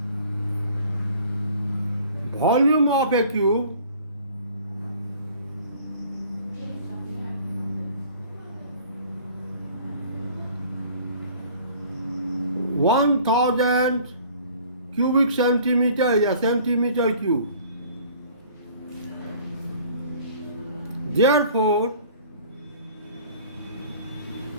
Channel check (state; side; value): inverted; both; correlation -0.50